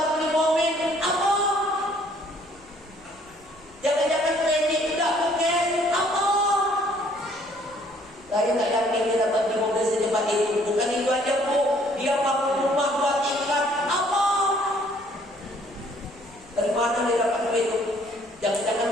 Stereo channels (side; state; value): right; noise; rumble, 27 dB below the sound